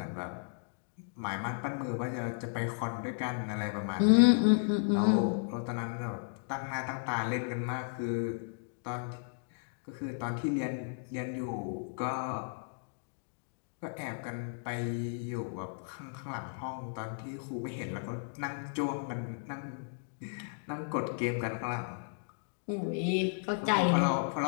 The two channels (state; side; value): silent; right; digital silence